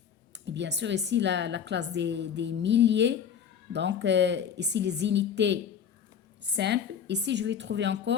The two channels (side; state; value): right; quieter; 8.0 dB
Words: bien sûr ici la classe des milliers. Donc, ici les unités simples. Ici, je vais trouver